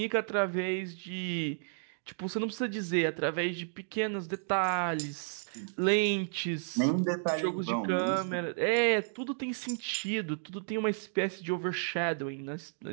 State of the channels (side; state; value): left; silent; digital silence